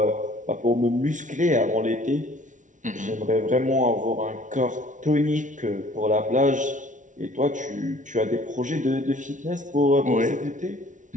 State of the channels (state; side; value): late; left; 0.37 ms